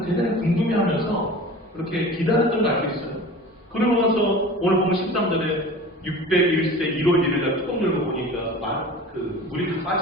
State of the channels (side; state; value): both; normal; correlation 0.38